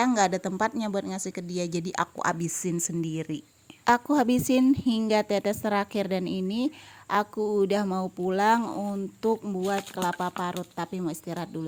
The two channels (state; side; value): identical; both; correlation 1.00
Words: nggak ada tempatnya buat ngasih ke dia, jadi aku abisin sendiri. Aku habisin hingga tetes terakhir, dan ini aku udah mau pulang untuk buat kelapa parut, tapi mau istirahat